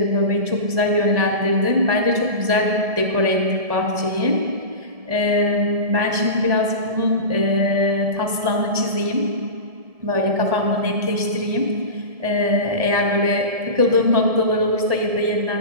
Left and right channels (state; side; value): late; left; 1.7 ms